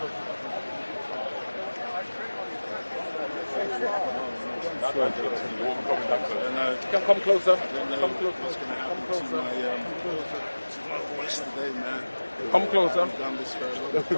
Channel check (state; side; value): inverted; both; correlation -1.00